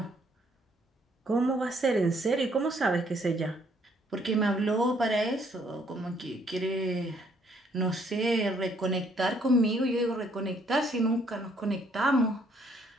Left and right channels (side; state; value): both; normal; correlation 0.66